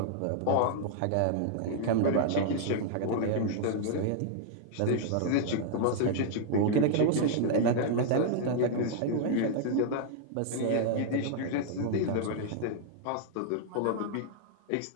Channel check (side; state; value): both; different; correlation -0.01